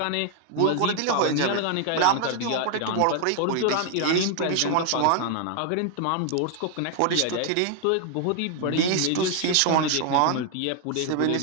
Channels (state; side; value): different; both; correlation 0.00